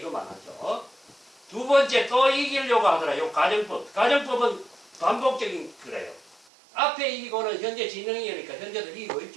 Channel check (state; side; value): drops out; left; at 6.5 s